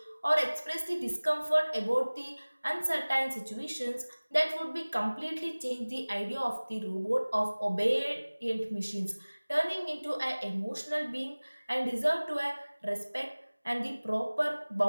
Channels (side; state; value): both; inverted; correlation -1.00